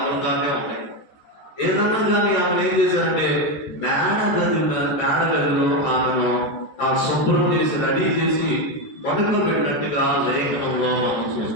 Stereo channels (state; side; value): late; right; 14 ms